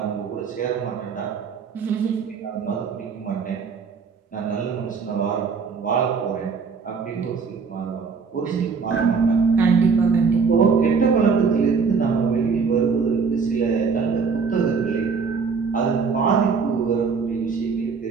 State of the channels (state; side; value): quieter; left; 5.4 dB